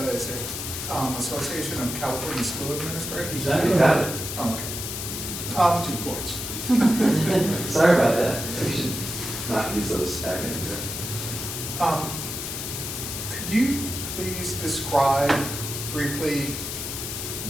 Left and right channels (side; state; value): left; noise; hiss, 5 dB below the sound